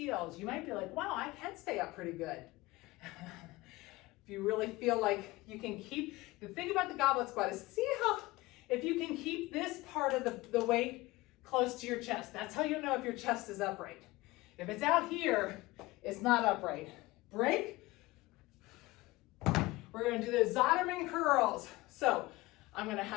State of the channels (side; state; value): right; quieter; 20.4 dB